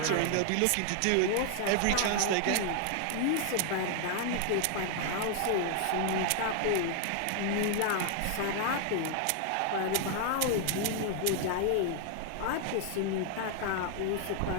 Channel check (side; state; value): both; different; correlation 0.00